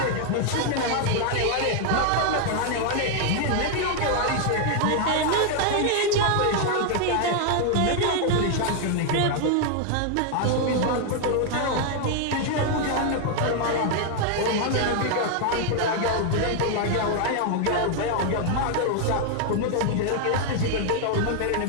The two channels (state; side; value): different; both; correlation 0.00